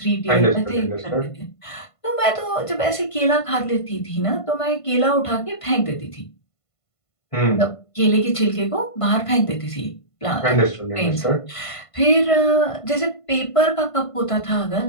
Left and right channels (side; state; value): right; late; 1.5 ms